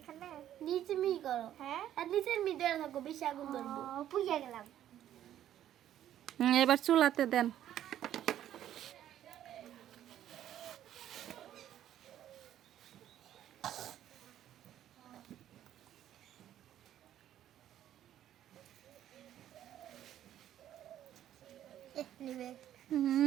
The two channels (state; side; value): quieter; left; 11.5 dB